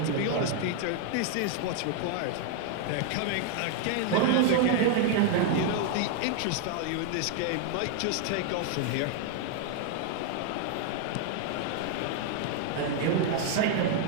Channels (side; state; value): both; different; correlation 0.00